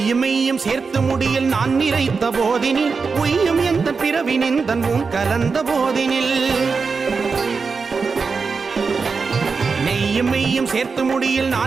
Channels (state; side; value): quieter; left; 4.9 dB